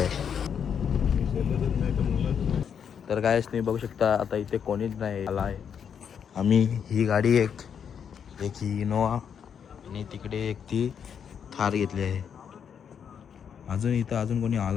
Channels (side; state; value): right; quieter; 7.7 dB